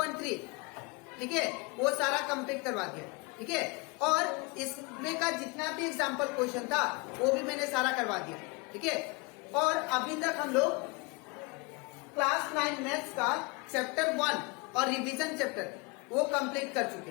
ठीक है वो सारा कंप्लीट करवा दिया। ठीक है, और इसमें का जितना भी एग्जाम्पल क्वेश्चन था वो भी मैंने सारा करवा दिया। ठीक है, और अभी तक हम लोग क्लास 9 मैथ्स का चैप्टर 1 और रिवीजन चैप्टर वो कंप्लीट कर चुके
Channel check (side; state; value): right; quieter; 28.3 dB